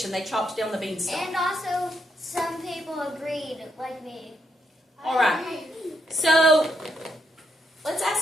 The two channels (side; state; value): both; normal; correlation 0.79